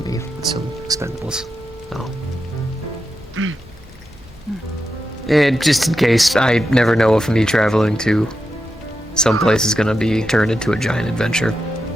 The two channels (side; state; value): both; normal; correlation 0.88